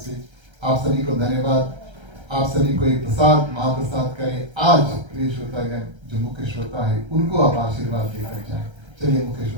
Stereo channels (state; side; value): late; left; 1.3 ms